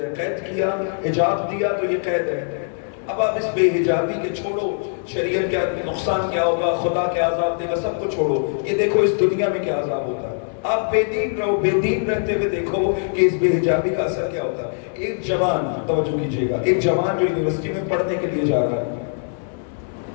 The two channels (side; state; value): right; silent; digital silence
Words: قید کیا، حجاب دیا تو یہ قید ہے۔ اب آپ اس بے حجابی کے چھوڑو، شریعت کیا نقصان کیا ہوگا، خدا کیا عذاب دے گا، سب کو چھوڑو، یہ دیکھو اس دنیا میں کیا عذاب ہوتا ہے۔ آپ بے دین رہو، بے دین رہتے ہوئے دیکھو کہ اس بے حجابی کا اثر کیا ہوتا ہے۔ ایک جوان، توجہ کیجئے گا، ایک جوان جو یونیورسٹی میں پڑھنے کے لیے جا رہا ہے،